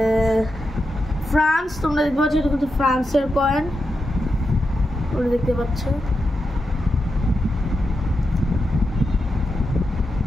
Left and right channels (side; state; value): both; normal; correlation 0.88